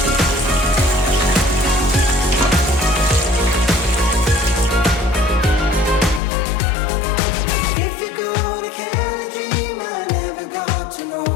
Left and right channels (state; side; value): drops out; right; at 6.2 s